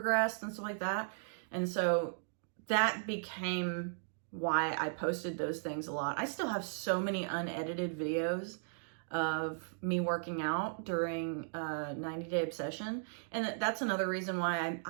and stuff like that. And so that became why I posted those things a lot. I still have so many unedited videos of me working out during 90-day obsession. And that's another reason why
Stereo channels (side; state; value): left; silent; digital silence